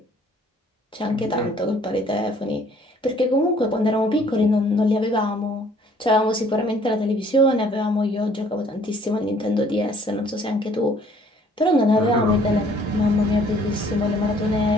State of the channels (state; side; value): normal; both; correlation 0.59